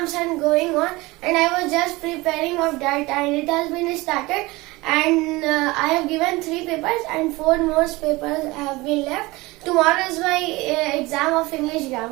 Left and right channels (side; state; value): left; quieter; 21.8 dB